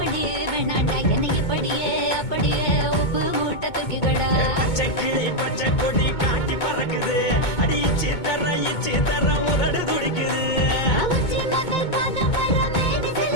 வேணாண்டா, என்னைக்கு படியே அப்படியே உப்பு மூட்டை தூக்கிக்கடா. பச்சை கிளி பச்சை கொடி காட்டி பறக்குது அடி இச்சி தர உதடு துடிக்குது அவச்சி மகள் பாதம் வர மேனி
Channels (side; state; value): right; late; 2.2 ms